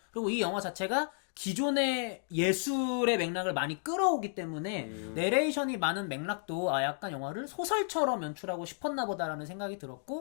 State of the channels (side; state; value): right; silent; 56 dB below the other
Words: 그리고 이 영화 자체가 기존의 예술의 맥락을 많이 끌어오기 때문에 내레이션이 많은 맥락도 약간 영화를 소설처럼 연출하고 싶었나 보다라는 생각이